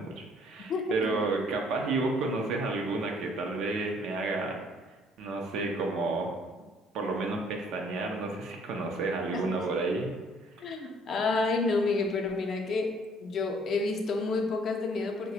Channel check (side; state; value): both; normal; correlation 0.60